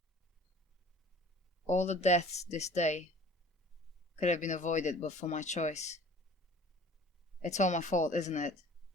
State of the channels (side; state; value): both; normal; correlation 0.47